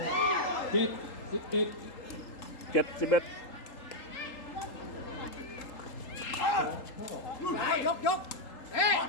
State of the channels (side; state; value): right; late; 3.8 ms